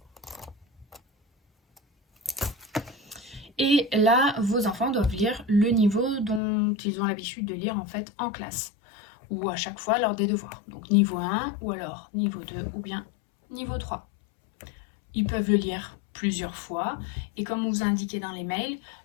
Et là, vos enfants doivent lire le niveau dont ils ont l'habitude de lire en fait en classe, ou à chaque fois lors des devoirs. Donc niveau 1, ou alors niveau 2, ou bien niveau 3. Ils peuvent le lire plusieurs fois, et comme on vous a indiqué dans les mails,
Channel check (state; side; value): drops out; right; at 6.4 s